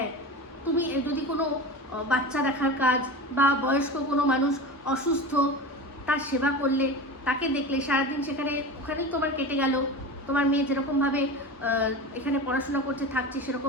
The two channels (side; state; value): both; normal; correlation 0.29